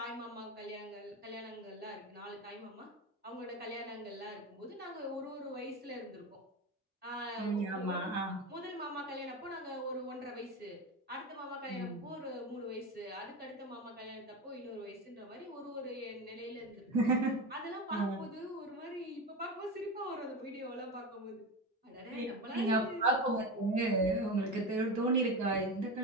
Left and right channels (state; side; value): normal; both; correlation 0.22